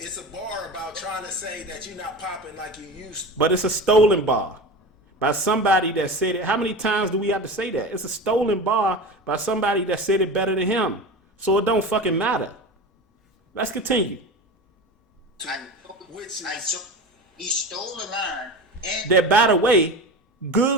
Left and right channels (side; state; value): both; normal; correlation 0.29